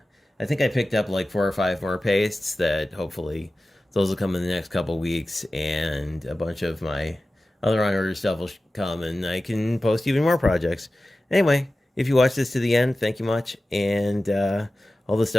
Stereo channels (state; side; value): normal; both; correlation 0.95